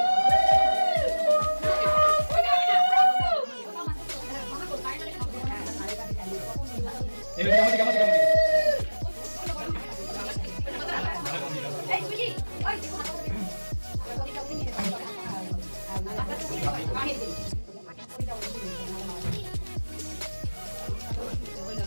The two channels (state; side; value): inverted; both; correlation -1.00